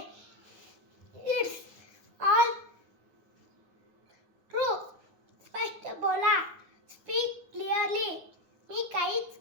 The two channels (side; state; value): left; late; 9.6 ms